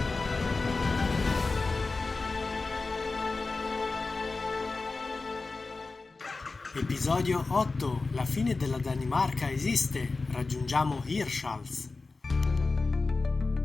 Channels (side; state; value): right; quieter; 3.7 dB